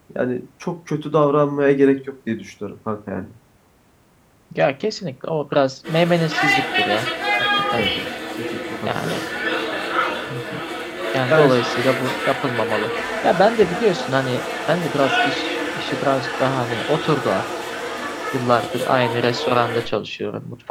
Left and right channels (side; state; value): both; identical; correlation 1.00